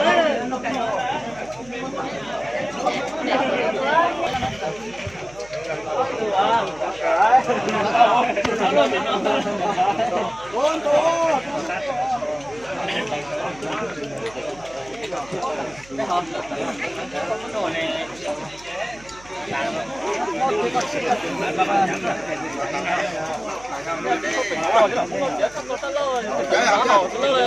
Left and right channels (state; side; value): noise; right; hum, 22 dB below the sound